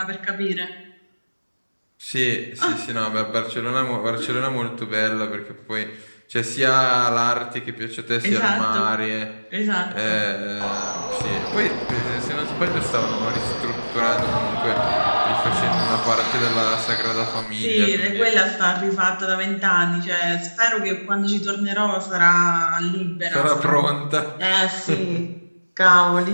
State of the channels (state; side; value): inverted; both; correlation -1.00